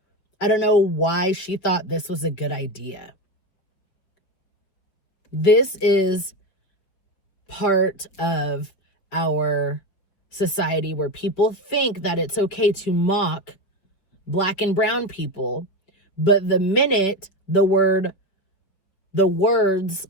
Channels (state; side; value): late; right; 5.4 ms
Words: I don't know why she thought this was a good idea. This is part of our society where people think that it's okay to mock Black and brown people, but the minute the words